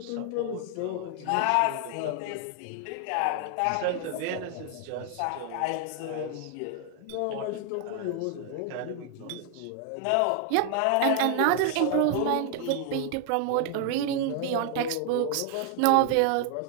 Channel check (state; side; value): different; both; correlation 0.00